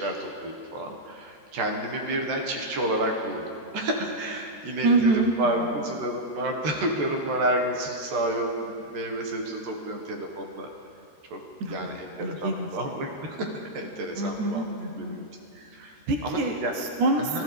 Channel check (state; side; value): late; left; 13 ms